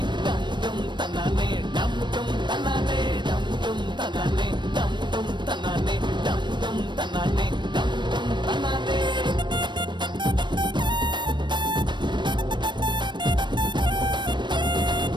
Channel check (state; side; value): late; left; 0.22 ms